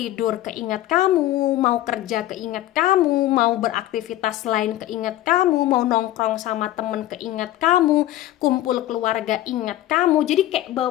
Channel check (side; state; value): right; quieter; 14.5 dB